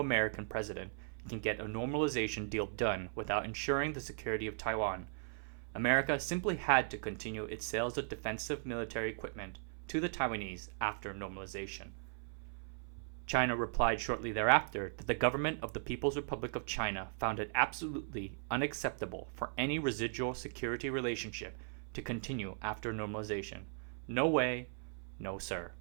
president can get a normalization deal done without ensuring the security of Taiwan. America simply had to continue its sales of defensive military equipment to the Taiwanese after normalization. China replied shortly thereafter that the government of the People's Republic of China found it absolutely unacceptable for any residual security relationship to continue after normalization. No way, no sir.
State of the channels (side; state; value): left; silent; 53 dB below the other